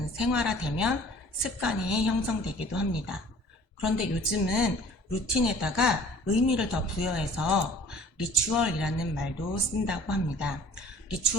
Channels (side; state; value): both; normal; correlation 0.50